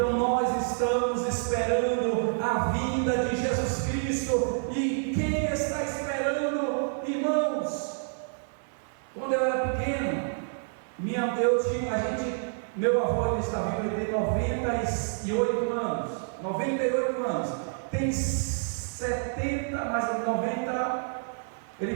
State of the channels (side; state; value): left; silent; digital silence